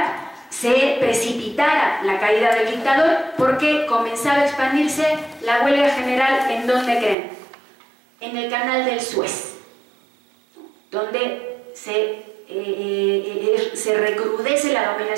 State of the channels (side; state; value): left; drops out; at 7.2 s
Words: se precipitara la caída del dictador, porque comenzaba a expandirse la huelga general. ¿En dónde creen? En el canal del Suez, donde se recrudece la